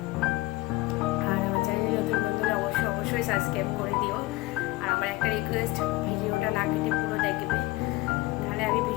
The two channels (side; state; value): right; quieter; 20.6 dB